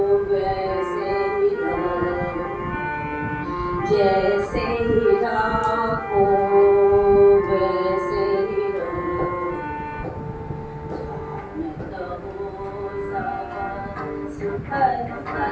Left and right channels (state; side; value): identical; both; correlation 1.00